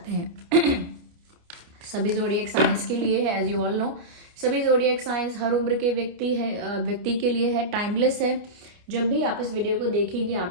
हैं। सभी ज़ोडिएक साइंस के लिए है, एज यू ऑल नो। सभी ज़ोडिएक साइंस हर उम्र के व्यक्ति के लिए है, टाइमलेस है। जब भी आप इस वीडियो को देखेंगे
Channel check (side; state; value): left; late; 29 ms